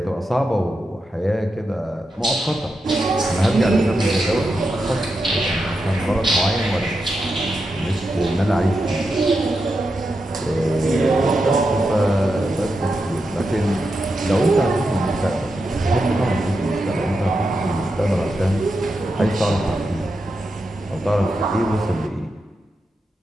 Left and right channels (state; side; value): normal; both; correlation 0.87